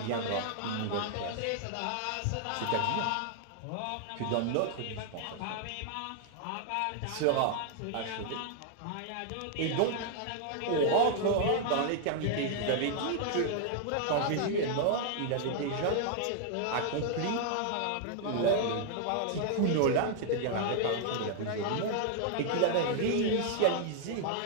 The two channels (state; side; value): different; both; correlation 0.00